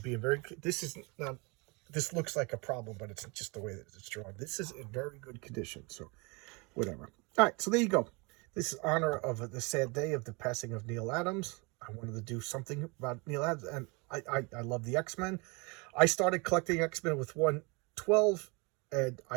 being very, this looks like a problem, but it's just the way that it's drawn. This is in very good condition, so whatever. All right, so there you go. This is honor of the sad day of the passing of Neal Adams. I wanted to do something about Neal Adams, and I love the X-Men. I started collecting X-Men with 112, and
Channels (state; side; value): quieter; left; 28.4 dB